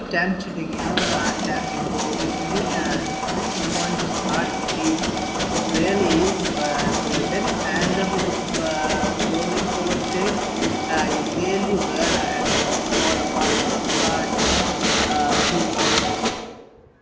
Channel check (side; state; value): both; identical; correlation 1.00